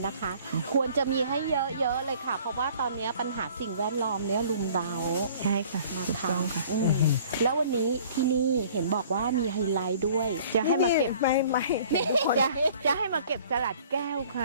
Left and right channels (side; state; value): both; inverted; correlation -0.52